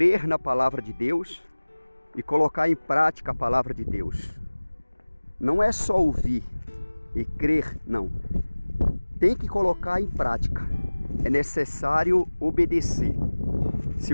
na palavra de Deus e colocar em prática a palavra de Deus. Não é só ouvir e crer, não. Tem que colocar em prática. É necessário obedecer. Se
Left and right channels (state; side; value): inverted; both; correlation -1.00